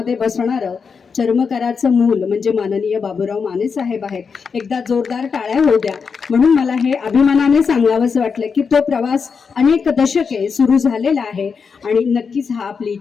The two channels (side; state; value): right; quieter; 5.7 dB